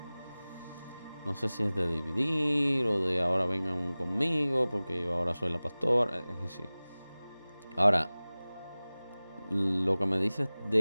no sé si es de dividir o de ahora vengan conmigo porque yo ahora soy la pastora, es decir, Ahora, lo que me dices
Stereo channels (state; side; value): inverted; both; correlation -0.98